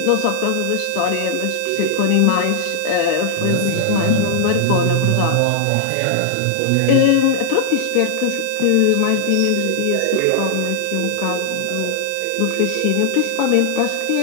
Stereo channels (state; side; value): different; both; correlation -0.01